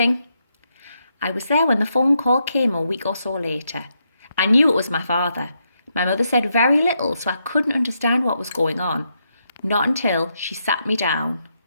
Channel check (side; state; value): both; inverted; correlation -0.80